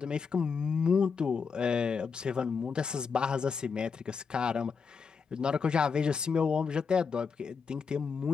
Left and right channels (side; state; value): right; quieter; 5.6 dB